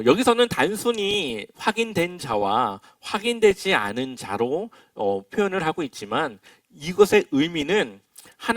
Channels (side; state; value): both; identical; correlation 1.00